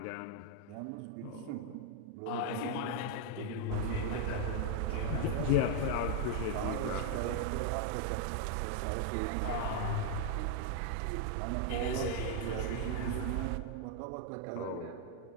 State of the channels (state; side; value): different; both; correlation 0.00